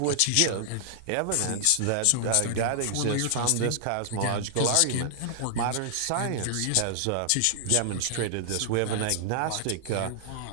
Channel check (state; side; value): different; both; correlation 0.00